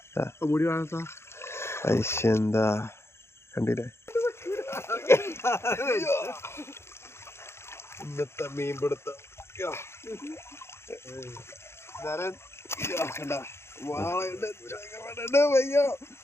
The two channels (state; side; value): late; right; 0.12 ms